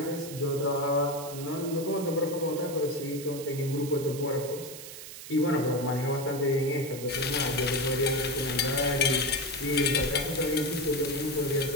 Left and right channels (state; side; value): noise; right; hiss, 12 dB below the sound